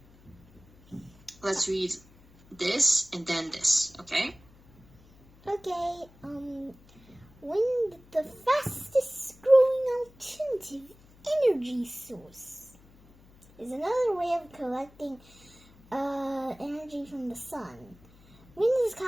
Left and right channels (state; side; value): noise; left; hum, 26 dB below the sound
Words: Let's read this and then this, okay? Okay, wind, the fastest growing alternative energy source, is another way of collecting energy from the sun. Wind is